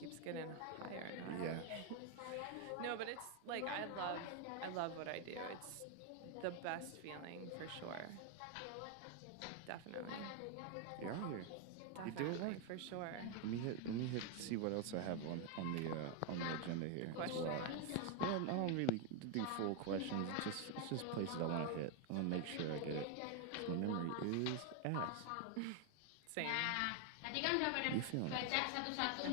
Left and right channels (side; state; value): both; different; correlation 0.01